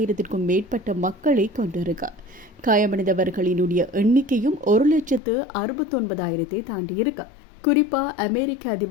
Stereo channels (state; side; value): drops out; right; at 5.2 s